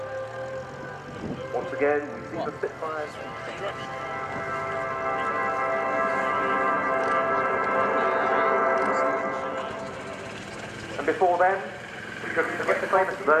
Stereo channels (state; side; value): identical; both; correlation 1.00